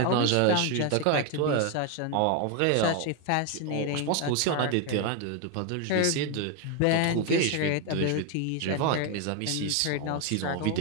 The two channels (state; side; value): different; both; correlation 0.01